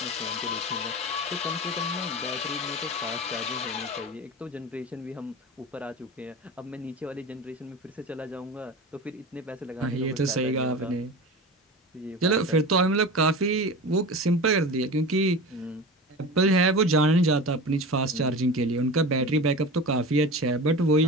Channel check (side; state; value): both; normal; correlation 0.31